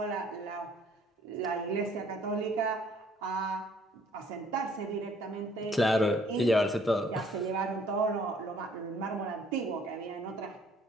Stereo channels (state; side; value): normal; both; correlation 0.60